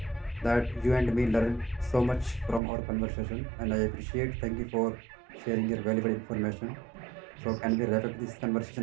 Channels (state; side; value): drops out; left; at 2.6 s